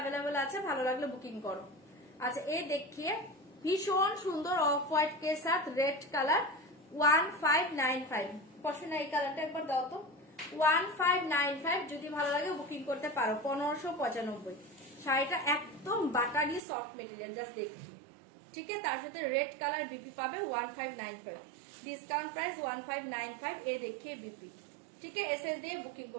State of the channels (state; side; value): drops out; left; at 16.6 s